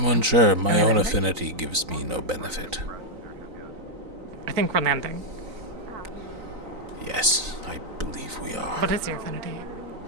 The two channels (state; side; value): late; left; 3.9 ms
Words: unsure. My own affinity gives me no benefit. I think we're landing. Yes, I believe we are. What is your affinity?